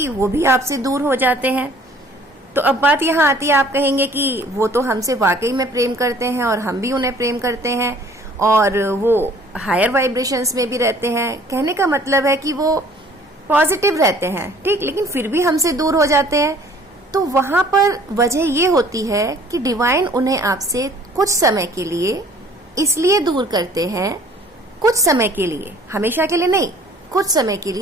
वो भी आपसे दूर हो जाते हैं। तो अब बात यहाँ आती है, आप कहेंगे कि वो तो हमसे वाकई में प्रेम करते हैं और हम भी उन्हें प्रेम करते हैं और वो हायर वाइब्रेशंस में भी रहते हैं। कहने का मतलब है कि वो पॉजिटिव रहते हैं, ठीक, लेकिन फिर भी हमसे दूर हो जाते हैं। तो वहां पर वजह ये होती है कि डिवाइन उन्हें आपसे कुछ समय के लिए इसलिए दूर करते हैं, कुछ समय के लिए, हमेशा के लिए नहीं, कुछ समय के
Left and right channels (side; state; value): both; normal; correlation 0.54